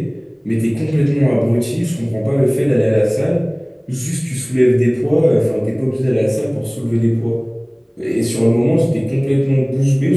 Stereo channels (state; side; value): identical; both; correlation 1.00